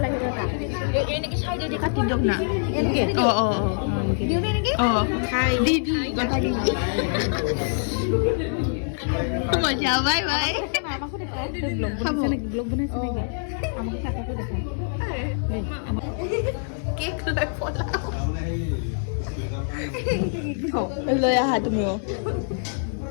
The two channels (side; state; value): right; silent; digital silence